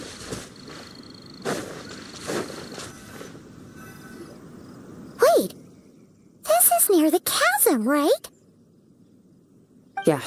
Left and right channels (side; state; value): both; identical; correlation 1.00